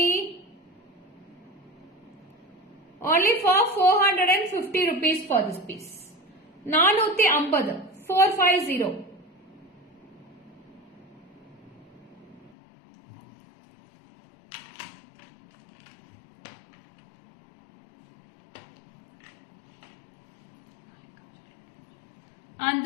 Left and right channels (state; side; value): drops out; right; at 12.5 s